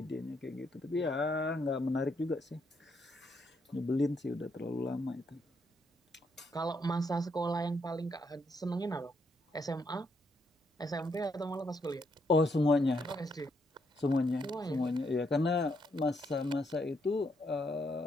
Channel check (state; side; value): normal; both; correlation 0.76